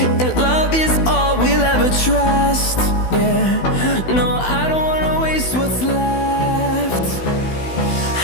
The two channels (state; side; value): late; right; 16 ms